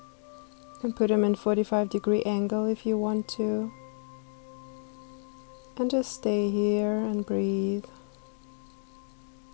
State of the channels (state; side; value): silent; right; 58 dB below the other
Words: can put them in 45-degree angle if you want to. And just stay here and breathe.